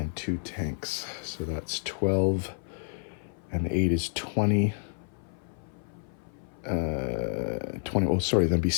2 tanks. So that's 12, and 8 is 20. 20, oh sorry, that'd be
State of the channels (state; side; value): silent; right; 56 dB below the other